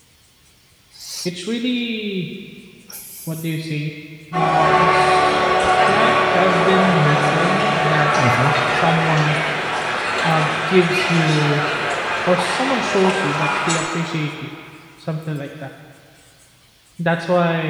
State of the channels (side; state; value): both; identical; correlation 1.00